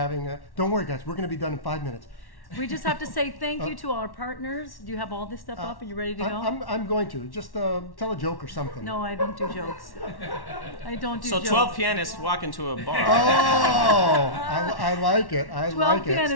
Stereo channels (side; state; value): right; late; 1.1 ms